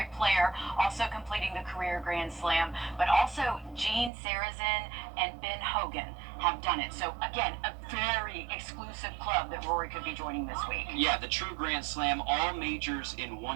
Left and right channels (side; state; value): left; drops out; at 4.1 s